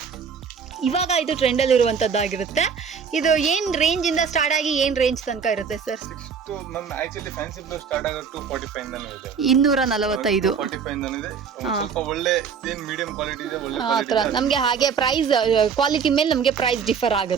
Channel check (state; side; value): quieter; left; 6.4 dB